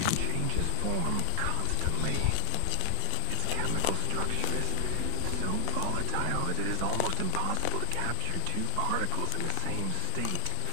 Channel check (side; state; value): both; different; correlation -0.01